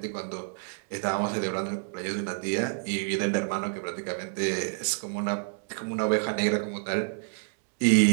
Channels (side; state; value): left; silent; digital silence